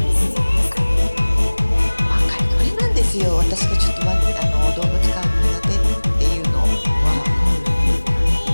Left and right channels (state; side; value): inverted; both; correlation -1.00